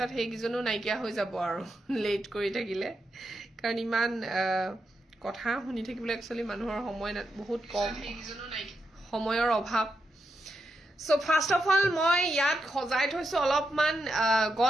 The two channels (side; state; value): both; normal; correlation 0.85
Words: হেগিজনো নাইকিয়া হৈ যাব আৰু লেট কৰি থাকিলে কাৰণ ইমান কথা শুনি থাকিবলৈ একচুয়ালি মানুহৰ সময় বহুত কম সময়ৰ অভাৱ So first of all মই ইয়াত খজাই থৈছো অলপমান